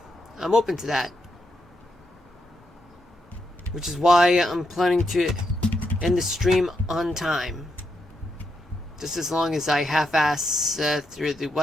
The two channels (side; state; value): both; normal; correlation 0.82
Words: I'm open to that. Which is why I'm planning to end the stream on time. Just as long as I half-ass through the